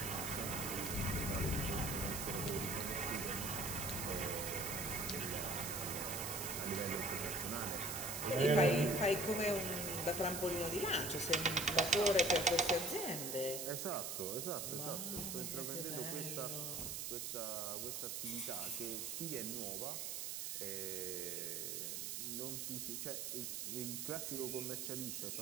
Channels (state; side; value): noise; right; hiss, 3 dB below the sound